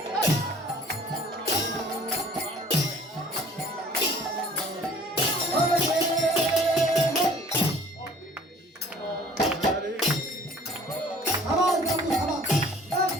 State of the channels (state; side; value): normal; both; correlation 0.51